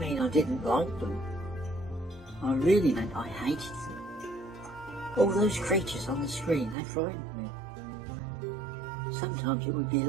I didn't like them. I really meant I hated them. All those creatures on the screen, they frightened me. Sometimes it would be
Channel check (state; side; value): drops out; left; at 6.8 s